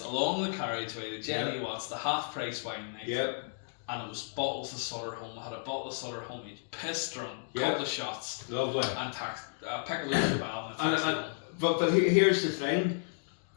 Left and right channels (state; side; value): silent; right; digital silence